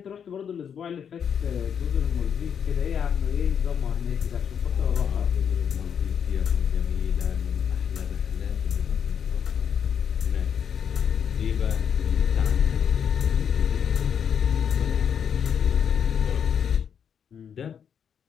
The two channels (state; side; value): quieter; right; 7.8 dB